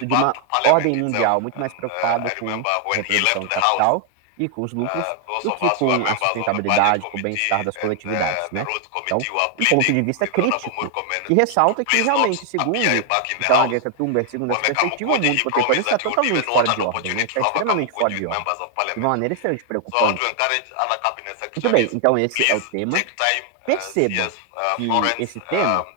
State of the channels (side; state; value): both; different; correlation 0.00